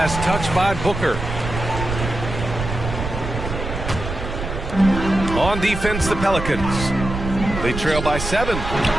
touched by Booker. On defense, the Pelicans. They trail by 7.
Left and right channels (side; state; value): right; noise; rumble, 6 dB below the sound